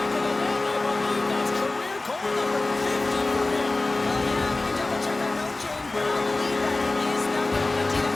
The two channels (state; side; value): quieter; right; 3.1 dB